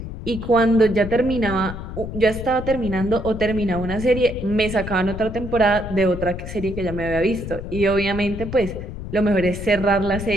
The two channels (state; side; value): noise; left; rumble, 8 dB below the sound